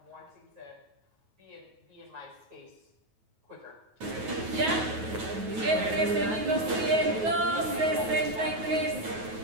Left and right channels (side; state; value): left; late; 9.3 ms